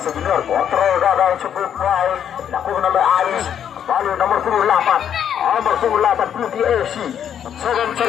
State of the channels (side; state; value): right; quieter; 9.1 dB